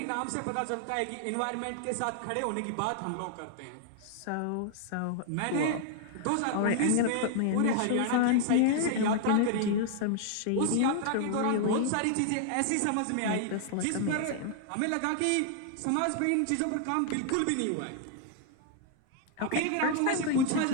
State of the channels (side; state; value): both; different; correlation 0.00